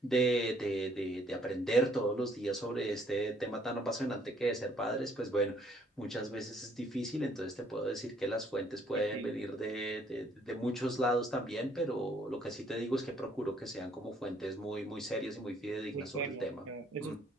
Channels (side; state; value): both; normal; correlation 0.64